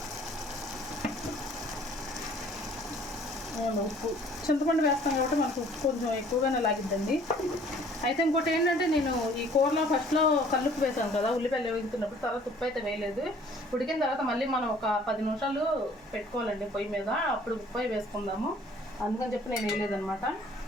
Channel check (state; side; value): normal; both; correlation 0.55